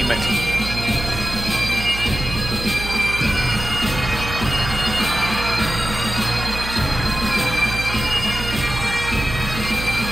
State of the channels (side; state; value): right; noise; hum, 7 dB below the sound